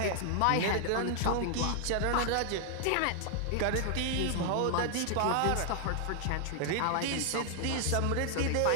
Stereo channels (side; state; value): both; different; correlation 0.00